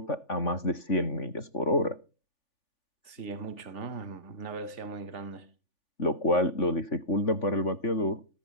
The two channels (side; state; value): right; late; 3.4 ms